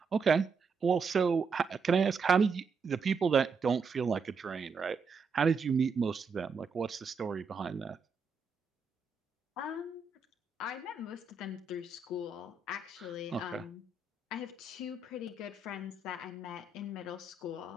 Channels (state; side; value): quieter; left; 4.6 dB